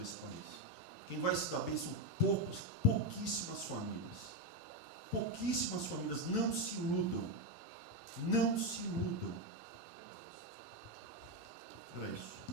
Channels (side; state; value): both; normal; correlation 0.07